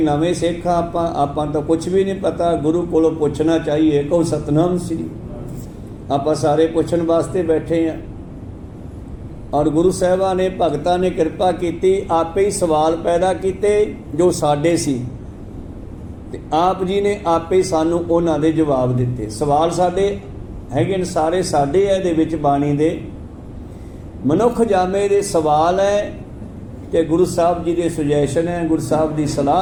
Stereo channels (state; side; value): identical; both; correlation 1.00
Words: ਸਿੱਖ ਆਪਾਂ ਤਾਂ ਕੁਝ ਵੀ ਨਹੀਂ ਪਤਾ। ਗੁਰੂ ਕੋਲੋਂ ਪੁੱਛਣਾ ਚਾਹੀਏ। ਕਹੋ ਸਤਨਾਮ ਸ੍ਰੀ। ਆਪਾਂ ਸਾਰੇ ਪੁੱਛਣ ਵਾਸਤੇ ਬੈਠੇ ਹਾਂ। ਔਰ ਗੁਰੂ ਸਾਹਿਬਾਨ ਨੇ, ਭਗਤਾਂ ਨੇ ਕਿਰਪਾ ਕੀਤੀ, ਆਪੇ ਹੀ ਸਵਾਲ ਪੈਦਾ ਕੀਤੇ ਜੋ ਸਾਡੇ ਸੀ, ਤੇ ਆਪ ਜੀ ਨੇ ਆਪੇ ਹੀ ਸਾਨੂੰ ਉਹਨਾਂ ਦੇ ਜਵਾਬ ਦਿੱਤੇ। ਸਵਾਲ ਸਾਡੇ ਹੈਗੇ ਨੇ, ਸਾਰੇ ਸਾਡੇ ਹੈ ਇਹਦੇ ਵਿੱਚ ਬਾਣੀ ਦੇ। ਮਨੁੱਖ ਜਾਮੇ ਦੇ ਸਵਾਲ ਹੈ ਤੇ ਗੁਰੂ ਸਾਹਿਬ ਜੀ ਦੇ ਸੁਜੈਸ਼ਨ ਹੈ, ਗੁਰੂ ਸਾਹਿਬ ਦੀ